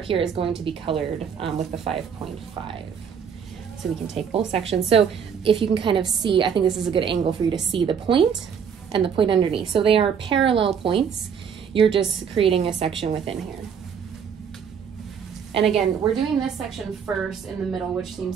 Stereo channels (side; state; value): left; quieter; 7.2 dB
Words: here is going to be colored with the 5.5. So we can take both sections. So if you can kind of see, I think this is a good angle for you to see the point and the point underneath. So they are parallel points. You're just creating a section within here. And again, we're doing this section first in the middle, which